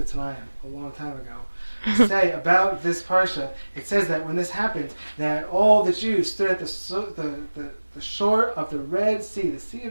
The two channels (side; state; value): both; inverted; correlation -1.00